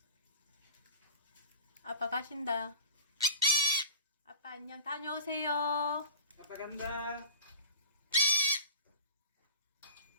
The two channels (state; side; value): inverted; both; correlation -0.38